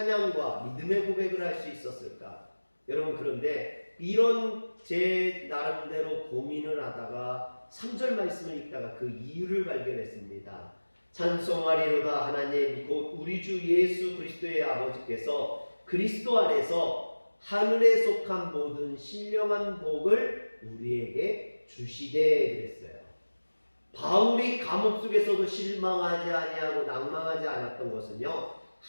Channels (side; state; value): both; inverted; correlation -1.00